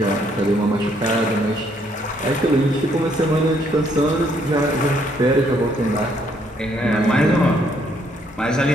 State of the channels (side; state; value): both; normal; correlation 0.69